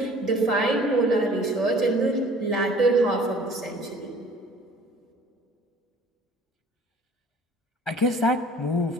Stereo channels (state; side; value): normal; both; correlation 0.51